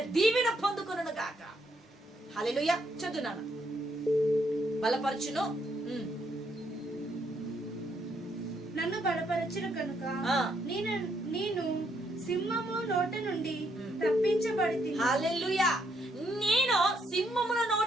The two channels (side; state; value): both; normal; correlation 0.74